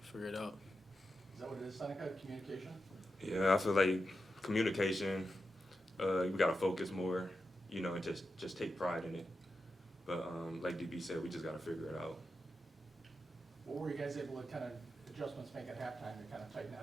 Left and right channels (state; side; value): normal; both; correlation 0.89